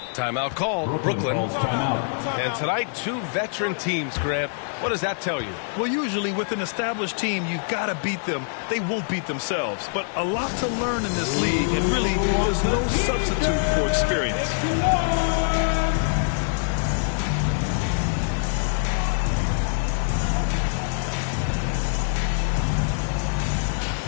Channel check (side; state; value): right; silent; digital silence